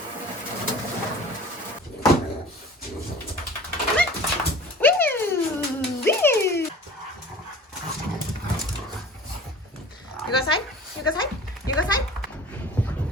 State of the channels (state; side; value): normal; both; correlation 0.42